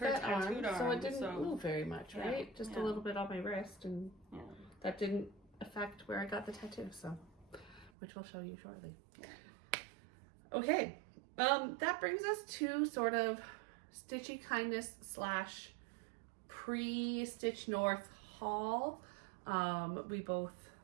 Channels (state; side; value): drops out; left; at 7.9 s